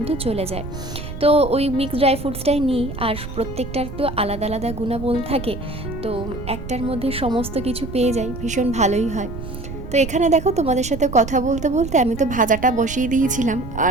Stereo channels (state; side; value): noise; right; rumble, 9 dB below the sound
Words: চলে যায়। তো ওই মিক্সড ড্রাই ফ্রুটসটাই নিই, আর প্রত্যেকটার তো আলাদা আলাদা গুণাগুণ থাকে। তো একটার মধ্যে সমস্ত কিছু পেয়ে যাই, ভীষণ ভালোই হয়। তো এখানে দেখো, তোমাদের সাথে কথা বলতে বলতে আমি তো ভাজাটা বসিয়ে দিয়েছিলাম,